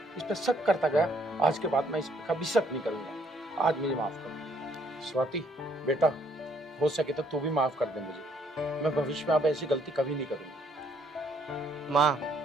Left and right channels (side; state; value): both; normal; correlation 0.67